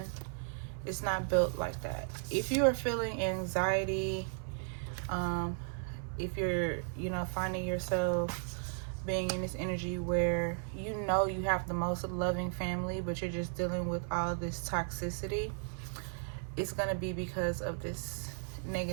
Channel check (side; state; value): left; silent; 54 dB below the other